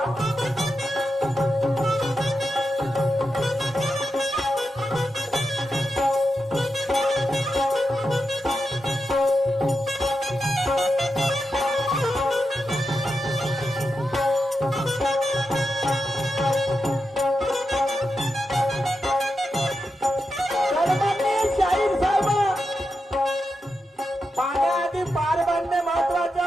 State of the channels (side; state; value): both; normal; correlation 0.88